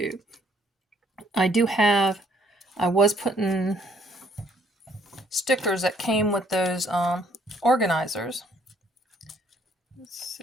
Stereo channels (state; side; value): normal; both; correlation 0.65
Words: I was putting stickers that came with those organizers. Let's